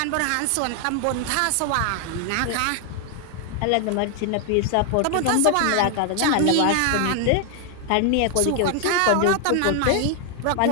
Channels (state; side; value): different; both; correlation 0.00